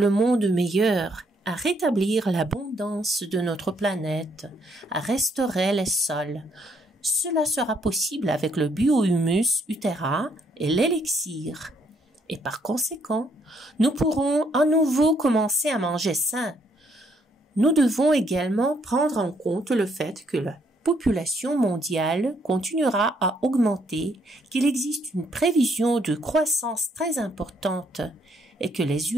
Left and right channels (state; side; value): normal; both; correlation 0.70